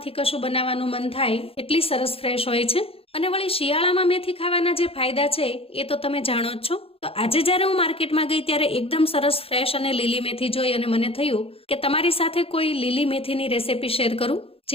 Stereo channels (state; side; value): late; right; 0.27 ms